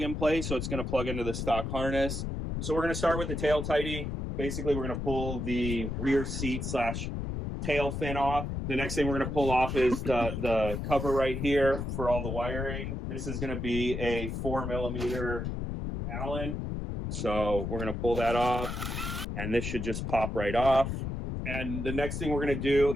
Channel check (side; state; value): left; noise; rumble, 4 dB below the sound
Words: and play, so it's going to plug into the stock harness. So we're going to start with the tail tidy. Basically, we're going to pull the rear seat / tail fin off. The next thing we're going to pull off is the cover right here for all the wiring. This is going to be a 4mm Allen. So we're going to pull that off, and this should just pop right off. And the next thing we're going to do